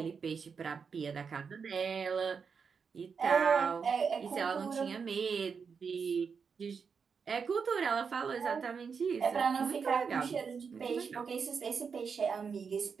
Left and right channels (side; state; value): left; quieter; 5.9 dB